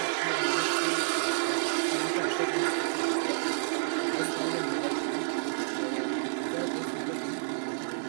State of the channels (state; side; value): silent; left; 58 dB below the other